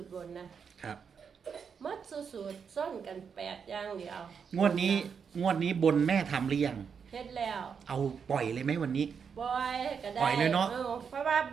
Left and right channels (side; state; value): left; quieter; 6.5 dB